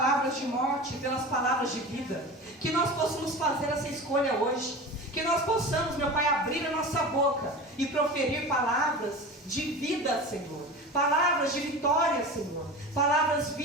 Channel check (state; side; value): normal; both; correlation 0.32